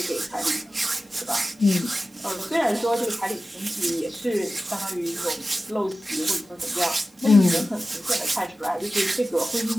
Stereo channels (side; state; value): both; normal; correlation 0.95